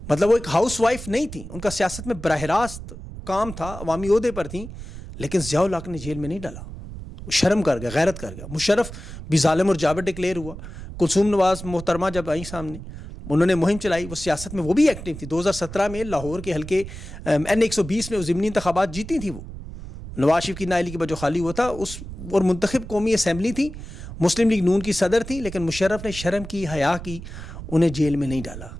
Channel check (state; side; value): noise; right; rumble, 11 dB below the sound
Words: مطلب وہ ایک ہاؤس وائف نہیں تھیں, ان کا سیاست میں براہ راست کام تھا, عوامی عہدے پر تھیں. لیکن ضیاء الحق نے جیل میں نہیں ڈالا, شرم کر گیا, غیرت کر گیا. مشرف بھی ظالم اور جابر ڈکلیئر ہوا. کلثوم نواز محترمہ جب آئیں سامنے, انہوں نے مہم چلائی, وہ سیاست میں وہ بھی ایکٹیو تھی. 2017 میں لاہور کے حلقے N120 میں ضمنی انتخابات جیتی تھی. وہ نواز شریف کی نااہلی کے بعد جو خالی ہوا تھا اس, اور منتخب قومی اسمبلی تھی, مسلم لیگ نون کی صدر تھی, لیکن مشرف نے شرم کی, حیا کی, انہیں جیل میں نہیں ڈالا.